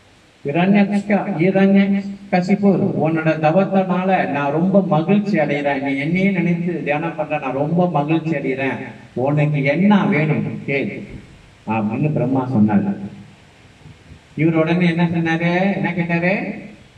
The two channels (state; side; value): identical; both; correlation 1.00